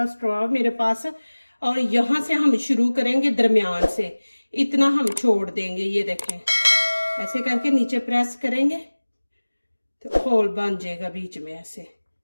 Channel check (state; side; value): inverted; both; correlation -1.00